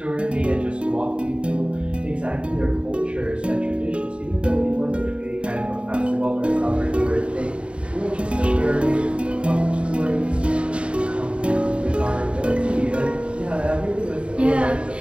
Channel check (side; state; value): left; late; 0.058 ms